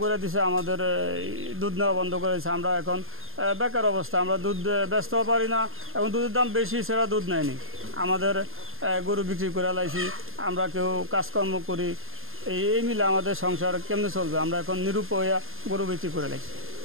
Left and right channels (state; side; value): late; left; 0.60 ms